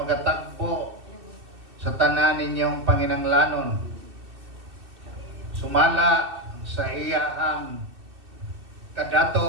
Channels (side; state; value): left; late; 2.6 ms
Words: sa tanan ninyong panginanglanon, sumala sa iyahang